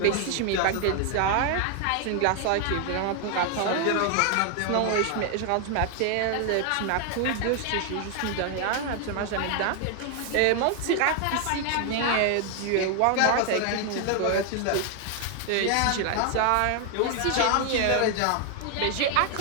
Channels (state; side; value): different; both; correlation 0.00